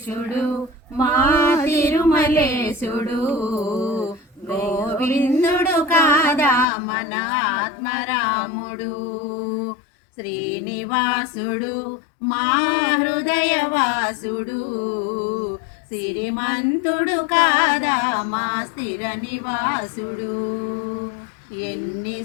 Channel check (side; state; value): right; drops out; at 6.7 s